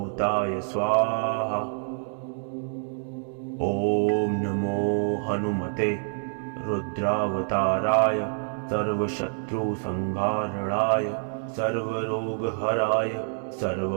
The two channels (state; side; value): silent; left; digital silence